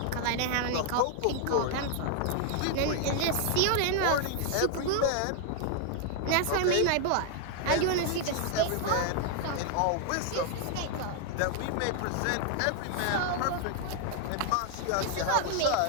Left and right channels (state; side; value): different; both; correlation 0.00